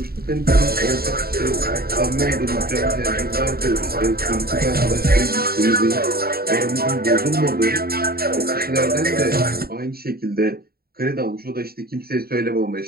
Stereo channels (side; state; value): left; late; 0.44 ms